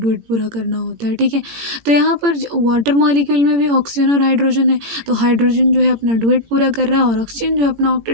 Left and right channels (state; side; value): late; left; 18 ms